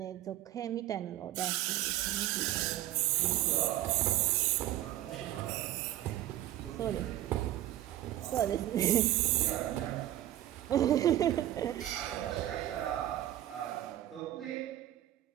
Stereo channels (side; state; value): left; quieter; 13.7 dB